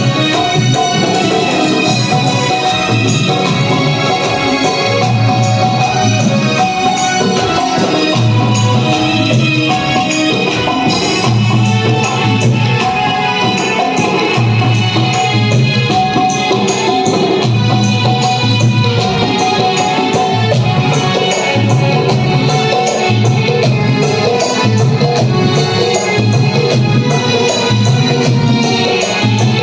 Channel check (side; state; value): both; identical; correlation 1.00